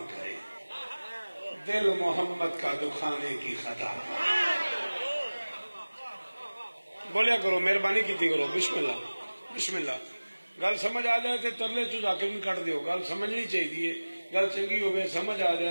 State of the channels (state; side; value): inverted; both; correlation -1.00